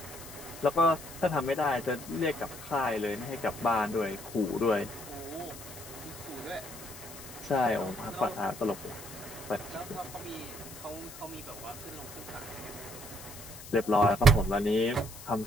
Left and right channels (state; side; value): noise; left; hiss, 14 dB below the sound